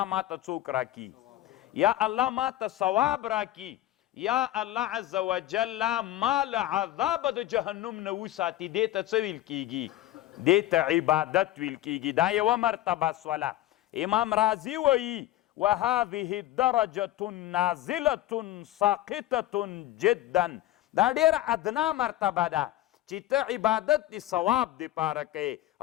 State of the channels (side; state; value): right; quieter; 14.7 dB